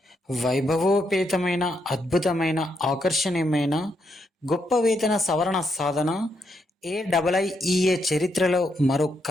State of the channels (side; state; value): both; normal; correlation 0.79